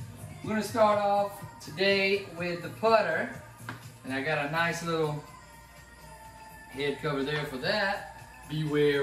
we're going to start off today with the putter, and I got a nice little head cover there for that.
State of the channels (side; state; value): both; identical; correlation 1.00